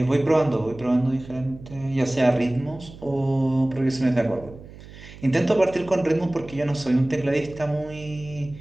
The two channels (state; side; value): noise; right; hum, 18 dB below the sound